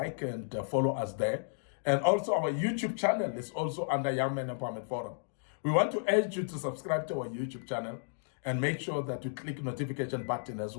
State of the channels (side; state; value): right; silent; digital silence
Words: and follow us there. And also our YouTube channel is also under Young Men Empowerment Forum. We want to urge you to subscribe to our YouTube channel and make sure that you click notification button as